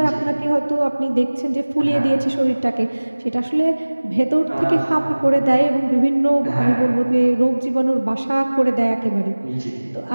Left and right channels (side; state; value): both; inverted; correlation -1.00